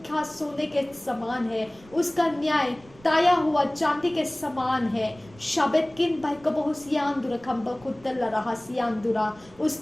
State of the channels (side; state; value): right; noise; rumble, 24 dB below the sound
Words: सोने के समान है। उसका न्याय ताया हुआ चांदी के समान है। शबेतकिन बाइकबहुसियांदुरा खंबकुत्तल रहसियांदुरा,